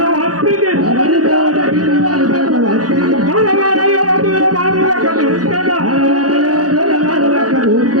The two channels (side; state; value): left; late; 0.67 ms